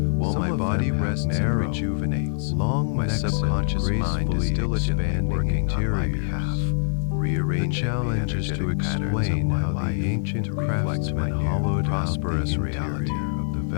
While Some my of body them have rests and narrow, rejuvenates, long my necks and subconscious mind is gracefully diligently expanding working on my interiors. behalf, The rearranging challenge the is to energetic patterns of explain my how life the ancient to reflect my craftsman new, hollowed prosperous out the reality. interior of the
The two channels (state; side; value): silent; right; digital silence